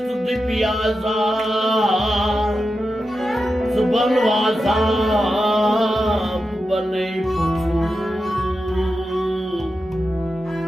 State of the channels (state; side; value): normal; both; correlation 0.90